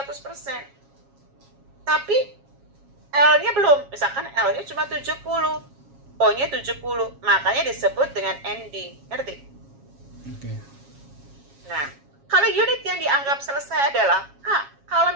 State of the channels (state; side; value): late; left; 7.3 ms